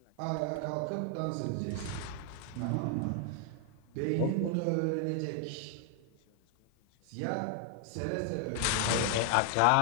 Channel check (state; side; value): different; both; correlation 0.00